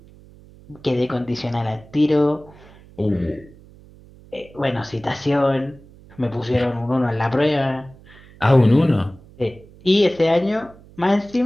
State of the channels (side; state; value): right; noise; hum, 23 dB below the sound